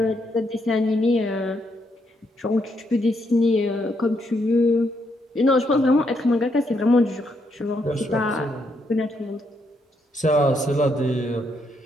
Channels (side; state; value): both; normal; correlation 0.76